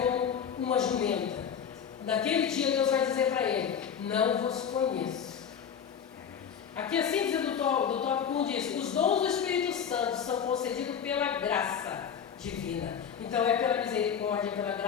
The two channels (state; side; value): quieter; right; 7.7 dB